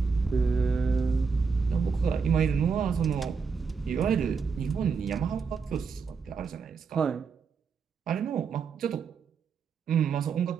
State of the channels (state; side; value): quieter; left; 5.4 dB